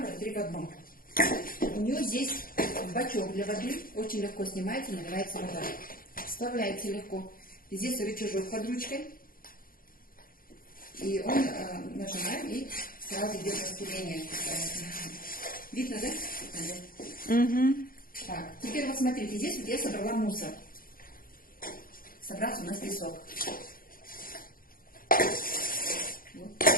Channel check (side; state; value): right; late; 0.41 ms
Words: 3 в 1. У нее здесь бачок для воды. Очень легко снимается, наливается вода. Вставляется легко. Здесь рычажок под ручкой. И он нажимаем, и сразу идет распыление. Видно, да? Угу. Так, теперь вот смотрите, здесь вот я собрала мусор. Собрался у нас песок. Вот.